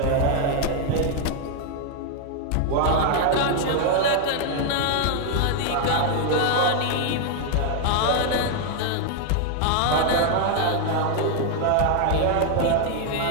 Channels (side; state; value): both; different; correlation 0.00